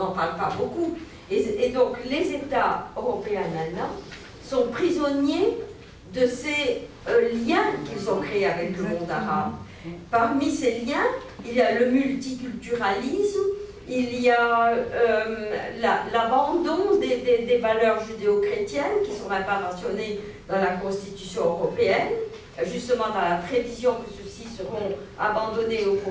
parle pas beaucoup. Et donc les États européens maintenant sont prisonniers de ces liens qu'ils ont créés avec le monde arabe. Parmi ces liens, il y a le multiculturalisme, il y a l'abandon des valeurs judéo-chrétiennes qui ne sont même pas mentionnées dans la Constitution européenne, justement dans la prévision que ceux-ci seront abandonnés au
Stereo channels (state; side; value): identical; both; correlation 1.00